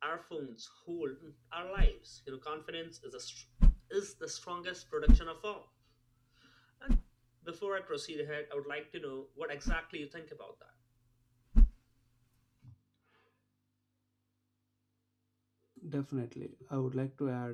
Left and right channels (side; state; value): both; identical; correlation 1.00